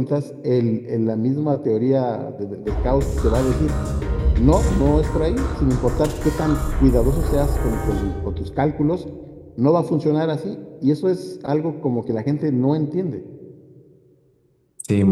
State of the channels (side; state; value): both; identical; correlation 1.00